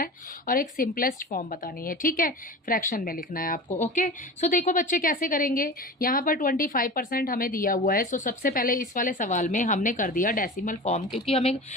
और एक सिंपलेस्ट फॉर्म बतानी है। ठीक है, फ्रैक्शन में लिखना है आपको। ओके, सो देखो बच्चे कैसे करेंगे। यहाँ पर 25% हमें दिया हुआ है। सो सबसे पहले इस वाले सवाल में हमने कर दिया डेसिमल फॉर्म, क्योंकि हमें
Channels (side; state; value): both; normal; correlation 0.33